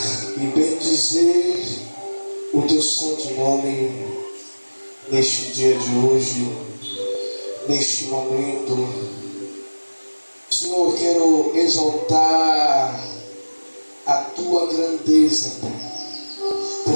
e bendizer o teu santo nome neste dia de hoje, neste momento. Senhor, eu quero exaltar a tua grandeza, Pai,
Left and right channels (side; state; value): both; inverted; correlation -1.00